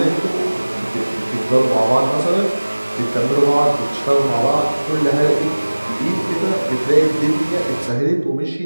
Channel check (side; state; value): both; inverted; correlation -1.00